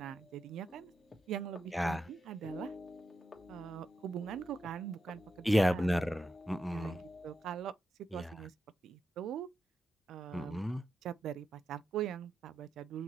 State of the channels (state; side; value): normal; both; correlation 0.87